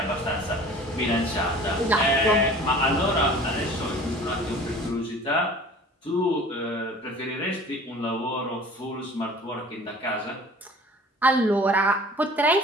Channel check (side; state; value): both; normal; correlation 0.45